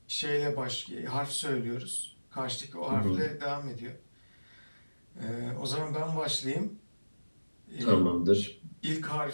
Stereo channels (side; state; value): both; inverted; correlation -1.00